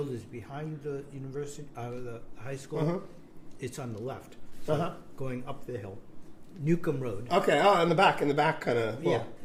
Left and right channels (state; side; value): identical; both; correlation 1.00